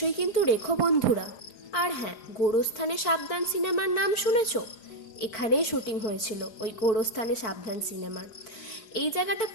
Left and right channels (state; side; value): late; right; 4.5 ms